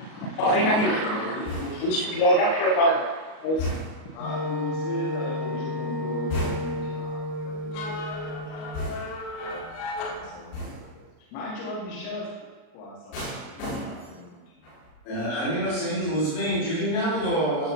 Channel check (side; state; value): right; late; 38 ms